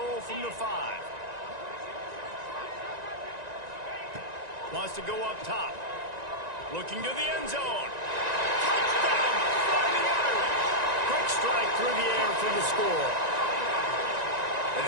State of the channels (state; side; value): late; left; 1.9 ms